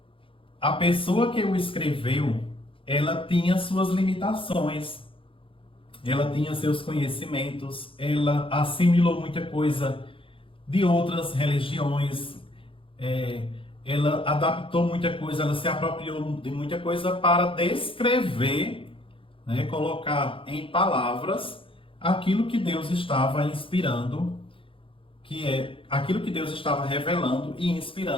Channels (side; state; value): right; late; 0.26 ms